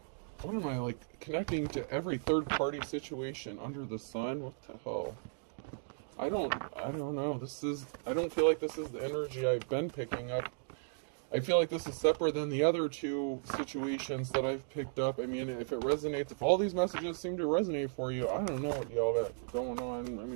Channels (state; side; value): silent; left; digital silence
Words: What am I, like, connecting to every third-party situation under the sun? What the hell? I don't know. I don't feel like this is the energy I've been picking up. I feel like this is separate than the other two situations that I've picked up. I mean, if it resonates, if all these messages seem to resonate for you, I don't know what y'all got going on. I